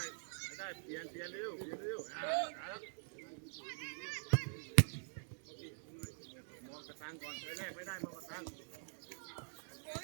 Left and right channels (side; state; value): left; silent; digital silence